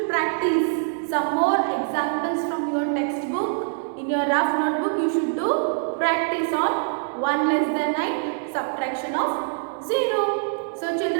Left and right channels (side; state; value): left; silent; digital silence